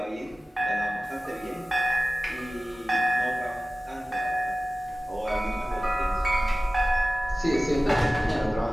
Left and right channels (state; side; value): normal; both; correlation 0.97